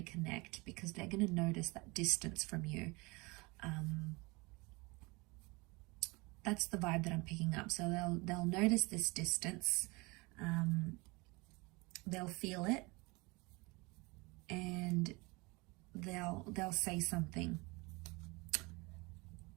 because they're going to notice that distance from you. That's the vibe that I'm picking up. So they'll notice this distance. They'll feel it, and they'll say something.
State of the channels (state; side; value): quieter; left; 25.9 dB